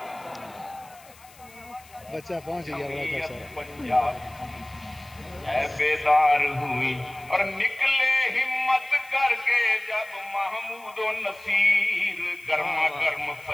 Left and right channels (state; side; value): noise; left; hiss, 24 dB below the sound